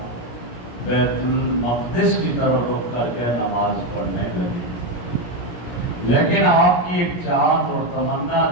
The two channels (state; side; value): late; right; 17 ms